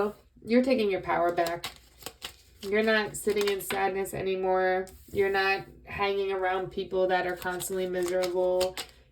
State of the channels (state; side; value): identical; both; correlation 1.00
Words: You're taking your power back. You're not sitting in sadness anymore. You're not hanging around people that are constantly miserable.